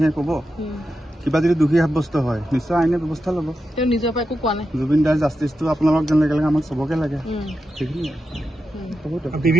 ক'ব কিবা যদি দোষী সাব্যস্ত হয় নিশ্চয় আইনে ব্যৱস্থা ল'ব তেওঁ নিজৰ পৰা একো কোৱা নাই জুবিন দাৰ জাষ্টিছটো আপোনালোকক যেনেকৈ লাগে আমাক চবকে লাগে সেইখিনিয়ে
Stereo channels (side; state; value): both; normal; correlation 0.89